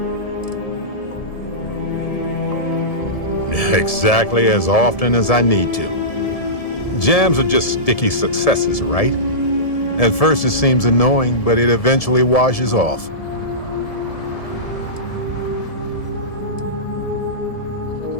Exactly as often as I need to. Jams are just sticky successes, right? At first it seems annoying, but it eventually washes off.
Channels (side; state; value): right; late; 1.7 ms